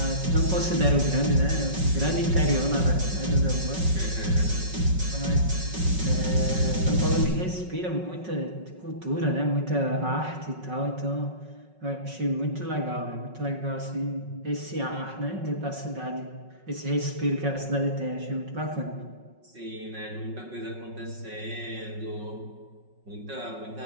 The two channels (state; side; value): late; left; 5.4 ms